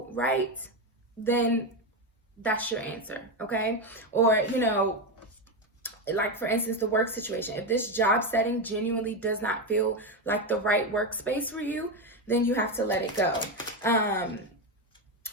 right, then that's your answer, okay? Or, you know, like for instance, the work situation. If this job setting genuinely does not feel like the right workspace for you, then you have to let it go.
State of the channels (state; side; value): normal; both; correlation 0.11